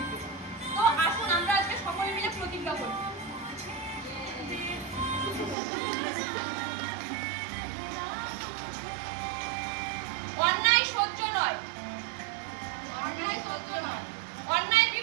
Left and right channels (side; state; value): left; drops out; at 5.6 s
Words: তো আসুন আমরা আজকে সকলে মিলে প্রতিজ্ঞা করি। অন্যায় সহ্য